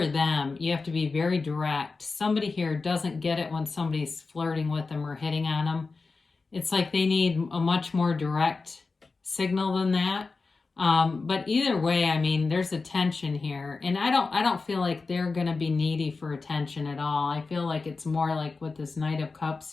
them. You have to be very direct. Somebody here doesn't get it when somebody's flirting with them or hitting on them. It's like they need a much more direct signal than that. But either way, I mean, there's a tension here, and I don't feel like they're going to be needy for attention at all. I feel like it's more like with this Knight of Cups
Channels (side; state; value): right; quieter; 4.1 dB